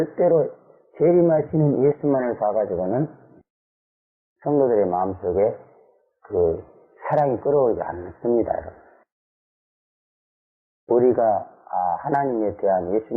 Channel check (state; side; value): identical; both; correlation 1.00